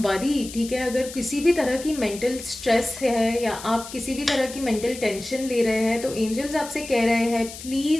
ठीक है। अगर किसी भी तरह की मेंटल स्ट्रेस है या आप किसी भी तरह की मेंटल टेंशन ले रहे हैं तो एंजल्स आपसे कह रहे हैं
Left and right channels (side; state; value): left; noise; hiss, 13 dB below the sound